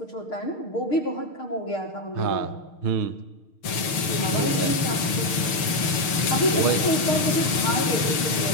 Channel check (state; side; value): late; right; 6.5 ms